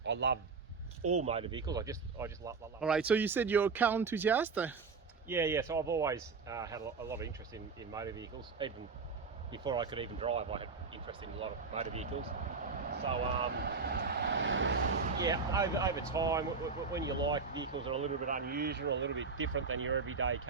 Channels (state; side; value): quieter; left; 4.8 dB